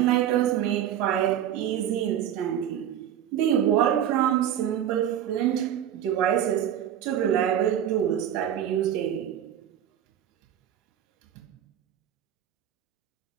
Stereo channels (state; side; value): quieter; left; 10.2 dB